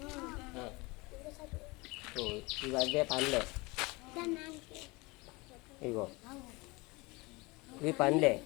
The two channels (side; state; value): right; quieter; 24.6 dB